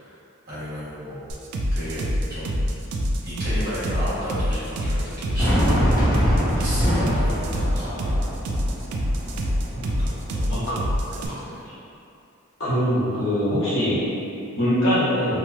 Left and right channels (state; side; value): normal; both; correlation 0.73